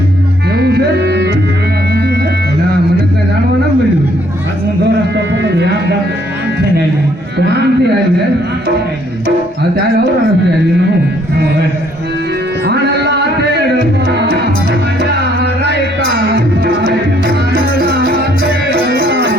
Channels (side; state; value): both; normal; correlation 0.65